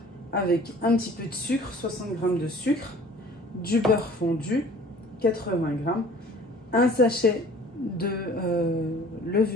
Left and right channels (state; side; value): normal; both; correlation 0.49